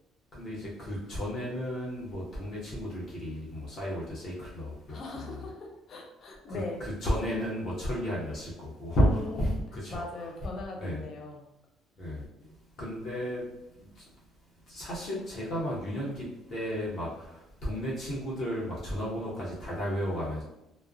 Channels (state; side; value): normal; both; correlation 0.72